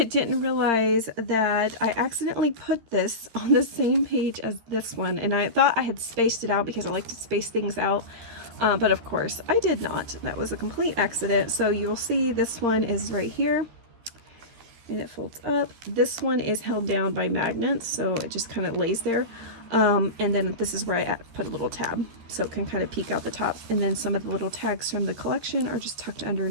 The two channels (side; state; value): left; late; 13 ms